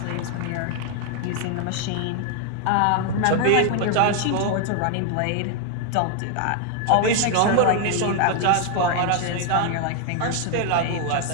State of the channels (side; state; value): both; different; correlation 0.00